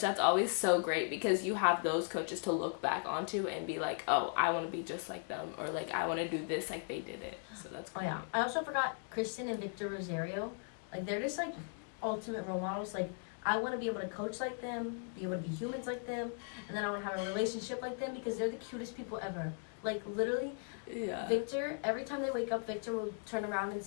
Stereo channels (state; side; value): silent; right; 53 dB below the other